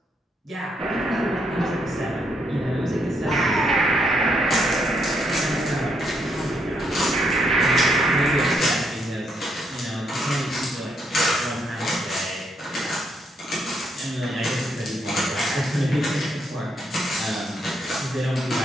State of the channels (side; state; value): both; normal; correlation 0.75